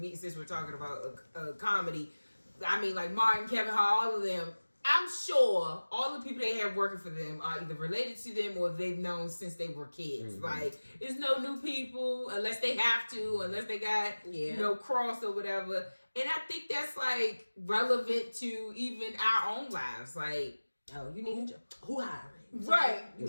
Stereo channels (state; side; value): inverted; both; correlation -1.00